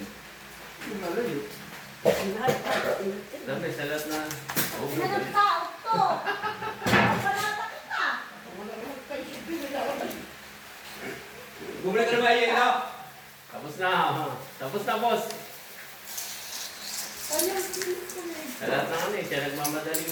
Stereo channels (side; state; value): both; identical; correlation 1.00